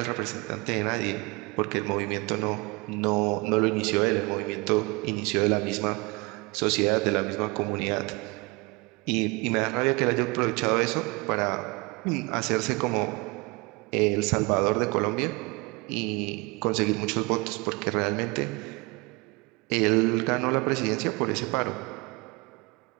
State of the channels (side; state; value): left; quieter; 26.4 dB